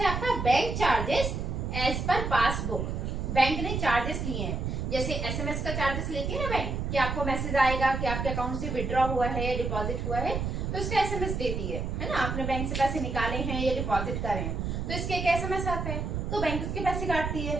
है आपका bank charges as per passbook. Bank ने चार्जेस लिए हैं, जैसे एसएमएस का चार्जेस लेके ना बैंक, कि आपको मैसेज आएगा कि आपके अकाउंट से विड्रॉ हुआ है या डिपॉजिट हुआ है, तो उसका एसएमएस देती है ना। आपने बैंक से पैसे निकाले हैं या डिपॉजिट करे हैं, तो इसके एक एसएमएस आता है, तो बैंक उसके पैसे काटती है।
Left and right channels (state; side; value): noise; right; rumble, 2 dB below the sound